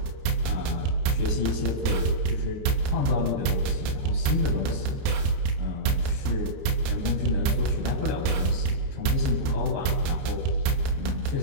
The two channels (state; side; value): late; left; 30 ms